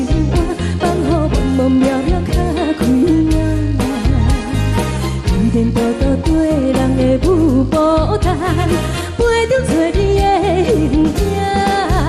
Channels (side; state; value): both; identical; correlation 1.00